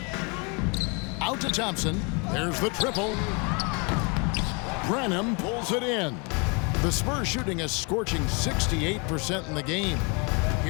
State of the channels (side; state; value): right; quieter; 31.9 dB